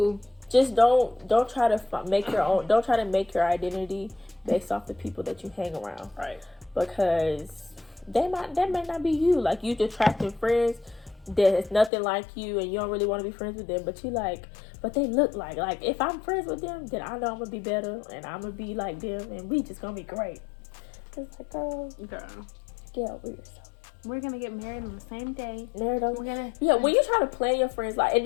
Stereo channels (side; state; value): right; drops out; at 11.9 s